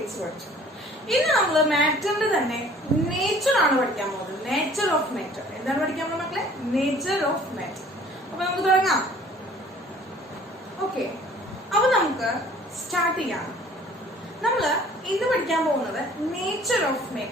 പഠിച്ചു. ഇന്ന് നമ്മൾ മാറ്ററിന്റെ തന്നെ നേച്ചർ ആണ് പഠിക്കാൻ പോകുന്നത്. Nature of matter. എന്താണ് പഠിക്കാൻ പോകുന്നത് മക്കളെ? Nature of matter. അപ്പൊ നമുക്ക് തുടങ്ങാം. ഓക്കെ, അപ്പൊ നമുക്ക് സ്റ്റാർട്ട് ചെയ്യാം. നമ്മൾ ഇന്ന് പഠിക്കാൻ പോകുന്നത് നേച്ചർ ഓഫ്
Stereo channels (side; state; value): both; normal; correlation 0.52